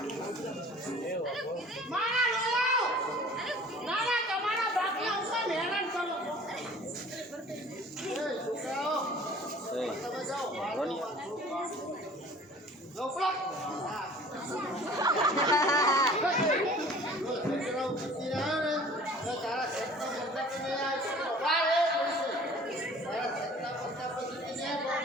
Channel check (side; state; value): both; normal; correlation 0.48